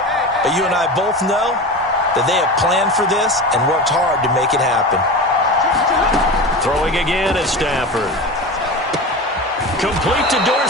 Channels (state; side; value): normal; both; correlation 0.28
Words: but you and I both know that they have planned for this and worked hard to make it happen. Throwing again at Stafford. Complete to